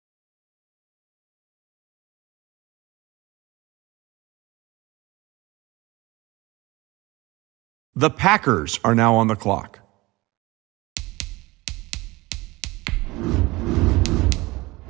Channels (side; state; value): left; quieter; 21.4 dB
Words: The Packers are now on the clock.